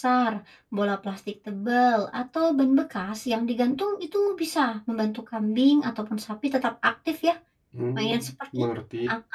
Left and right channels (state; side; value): identical; both; correlation 1.00